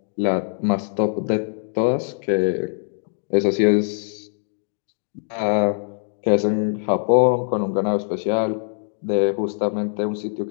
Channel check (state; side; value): silent; right; digital silence